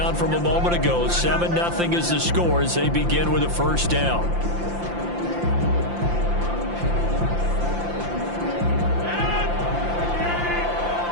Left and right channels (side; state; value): left; late; 5.8 ms